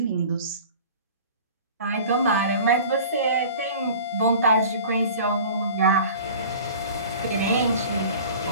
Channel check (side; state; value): both; inverted; correlation -0.42